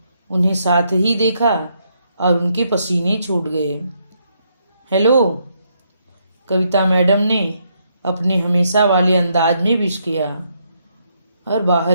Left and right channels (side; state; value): both; inverted; correlation -0.76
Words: उन्हें साथ ही देखा और उनके पसीने छूट गए। हेलो, कविता मैडम ने अपने हमेशा वाले अंदाज में विश किया और